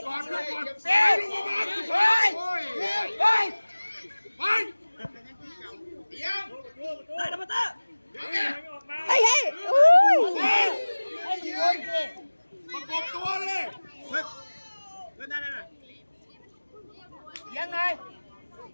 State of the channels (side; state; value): both; inverted; correlation -1.00